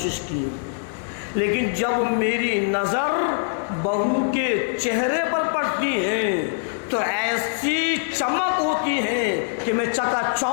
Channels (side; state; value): right; silent; digital silence